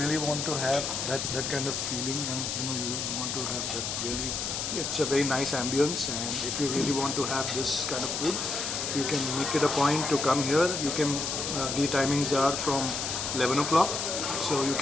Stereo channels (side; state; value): left; noise; hiss, 2 dB below the sound